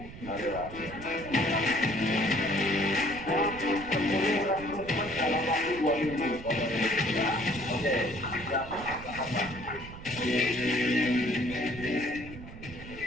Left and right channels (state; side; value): noise; right; rumble, 14 dB below the sound